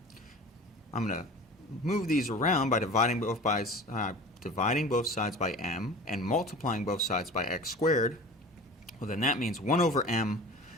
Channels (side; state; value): both; normal; correlation 0.38